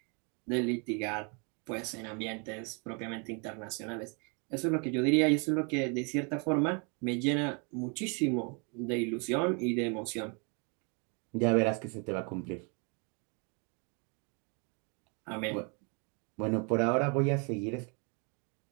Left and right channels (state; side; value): quieter; left; 34.8 dB